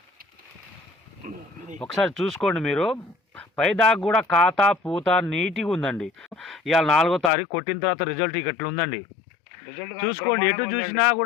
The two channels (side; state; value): right; drops out; at 7.3 s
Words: ఒకసారి చూసుకోండి మీరు, పైదాకా కూడా కాత పూత నీట్గా ఉందండి. ఇవాళ 4వ తారీఖు కొట్టిన తర్వాత రిజల్ట్ ఇట్లా ఉందండి. చూసుకోండి, ఎటు చూసినా